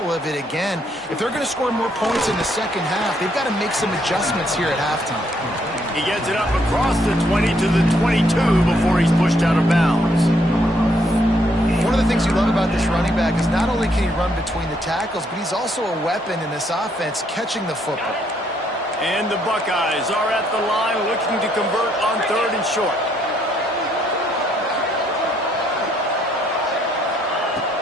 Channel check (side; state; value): both; normal; correlation 0.71